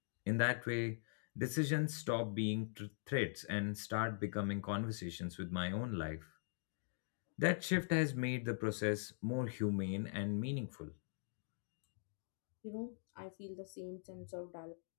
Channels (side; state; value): right; silent; digital silence